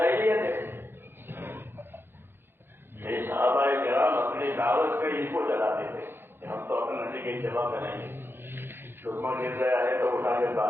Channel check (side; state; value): left; late; 0.10 ms